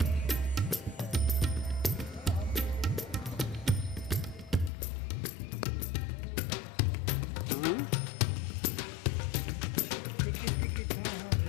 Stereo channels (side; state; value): right; drops out; at 4.7 s